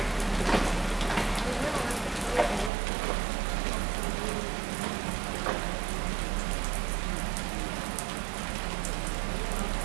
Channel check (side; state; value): left; drops out; at 2.7 s